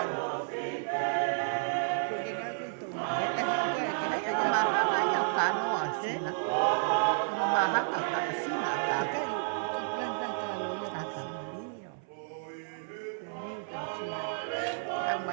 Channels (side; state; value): left; silent; 57 dB below the other